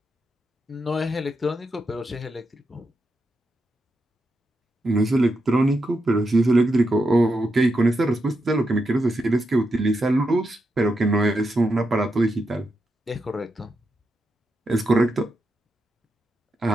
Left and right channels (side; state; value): both; normal; correlation 0.85